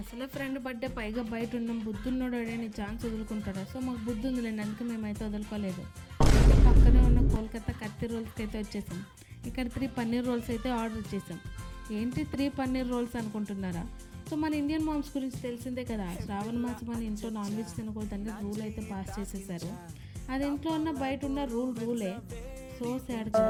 అసలే ఫ్రెండ్ బర్త్డే, పైగా బయట ఉన్నాం, బుద్ధున్నోడు అడని ఛాన్స్ వదులుకుంటాడు. సో మాకు బుద్ధి ఉందిలేండి, అందుకే మేమైతే వదులుకోలేదు. పక్కనే ఉన్న కోల్కతా కత్తి రోల్స్కి అయితే వచ్చేసాం. ఇక్కడ 3 పన్నీర్ రోల్స్ అయితే ఆర్డర్ చేసాం. ఏంటి 3 పన్నీర్ రోల్స్ అనుకుంటున్నారా? సో మన ఇండియన్ మామ్స్ గురించి తెలిసిందే కదా, శ్రావణ మాసం మన ఇంట్లో నాన్ వెజ్ తినకూడదని రూల్ అయితే పాస్ చేసేసారు. అది ఇంట్లో ఉన్న బయట ఉన్న రూలే. సో సాడ్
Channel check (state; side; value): identical; both; correlation 1.00